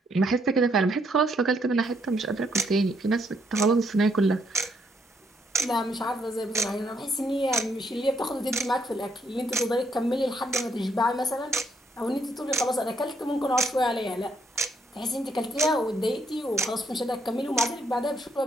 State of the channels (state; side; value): normal; both; correlation 0.73